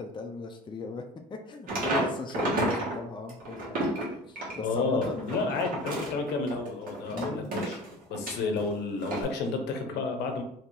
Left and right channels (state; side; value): normal; both; correlation 0.37